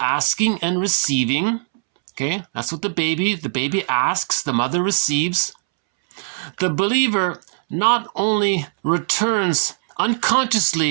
and receiving. Okay, that's what the baby asks, the mother receives. The believer not only returns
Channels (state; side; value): silent; left; 65 dB below the other